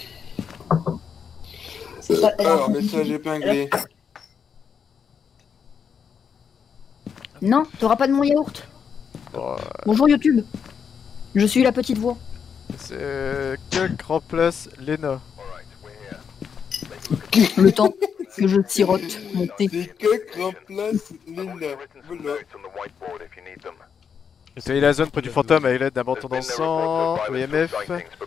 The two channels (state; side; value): quieter; right; 6.9 dB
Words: Alors, message épinglé. Non, t'auras pas de mon yaourt. Bon, Bonjour YouTube. Je suis la petite voix. c'est Kuk remplace Lena. Le temps que je sirote mon thé. C'est que remplace Lena. Voilà. Essayez la zone près du fantôme avec l'aide d'un bâton dans le sang, EMF,